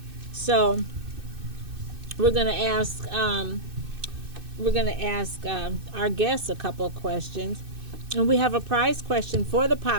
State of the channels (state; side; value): late; left; 2.6 ms